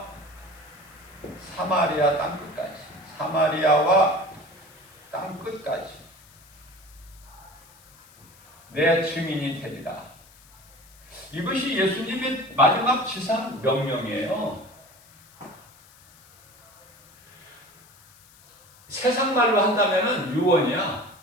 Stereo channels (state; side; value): noise; left; hiss, 26 dB below the sound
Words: 사마리아 땅끝까지 사마리아와 땅끝까지 내 증인이 되리라. 이것이 예수님의 마지막 지상 명령이에요. 세상 말로 한다면 유언이야.